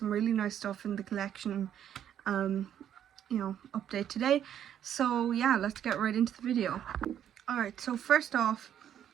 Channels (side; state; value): left; quieter; 10.0 dB